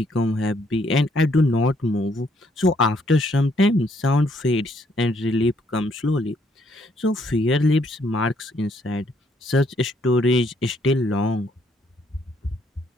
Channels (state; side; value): normal; both; correlation 0.69